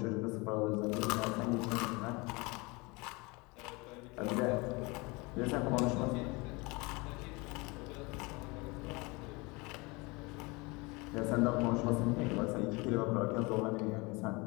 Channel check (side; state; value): right; quieter; 26.1 dB